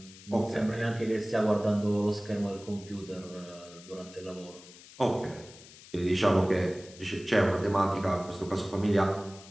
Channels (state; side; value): noise; left; hiss, 20 dB below the sound